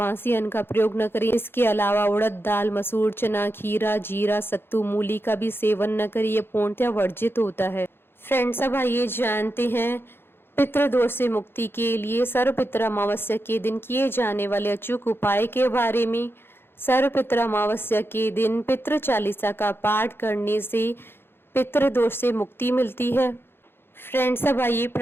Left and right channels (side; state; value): right; late; 0.11 ms